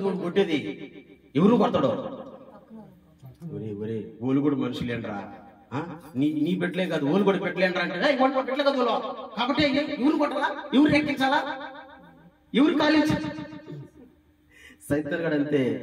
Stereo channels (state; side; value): identical; both; correlation 1.00